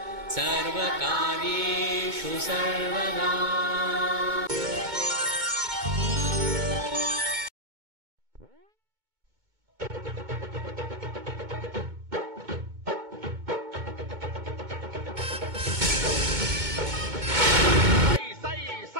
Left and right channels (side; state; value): left; late; 2.2 ms